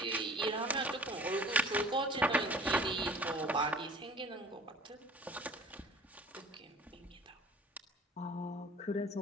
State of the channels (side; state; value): both; normal; correlation 0.47